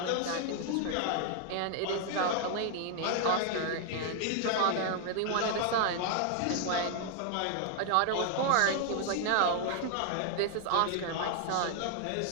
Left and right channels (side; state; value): both; different; correlation 0.00